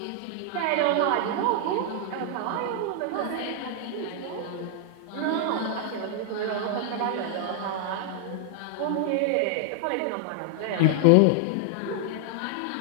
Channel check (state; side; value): different; both; correlation 0.00